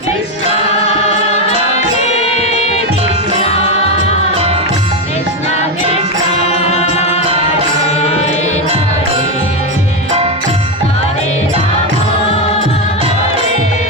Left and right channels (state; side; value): normal; both; correlation 0.10